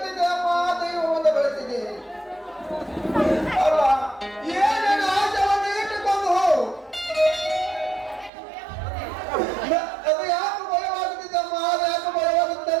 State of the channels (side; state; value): left; drops out; at 8.3 s